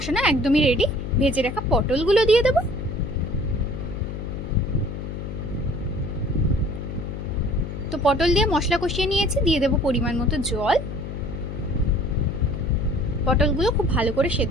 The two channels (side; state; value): left; noise; hum, 7 dB below the sound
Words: একদমই রেডি, ভেজে রাখা পটলগুলো দিয়ে দেব। তো পটল দিয়ে মশলা কষিয়ে নিয়েছি, দিয়ে দেব পরিমাণ মতো জল। পটলগুলো খুব ভালো করে